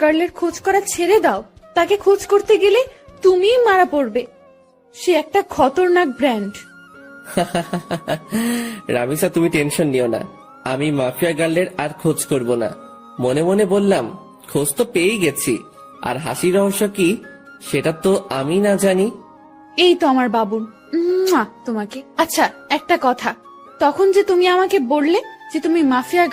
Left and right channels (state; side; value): identical; both; correlation 1.00